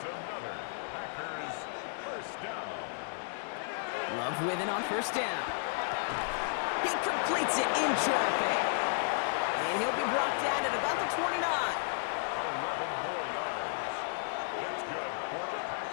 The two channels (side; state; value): right; silent; 56 dB below the other